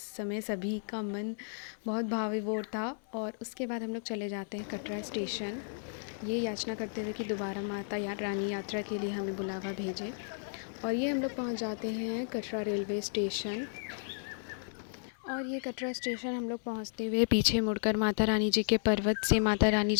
समय सभी का मन बहुत भावविभोर था। और उसके बाद हम लोग चले जाते हैं कटरा स्टेशन, ये याचना करते हुए कि दोबारा माता या रानी यात्रा के लिए हमें बुलावा भेजे। और ये हम लोग पहुंच जाते हैं कटरा रेलवे स्टेशन। और ये कटरा स्टेशन हम लोग पहुंचते हुए पीछे मुड़कर माता रानी जी के पर्वत से माता रानी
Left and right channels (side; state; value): right; silent; digital silence